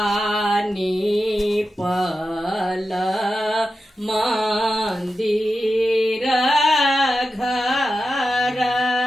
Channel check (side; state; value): both; normal; correlation 0.91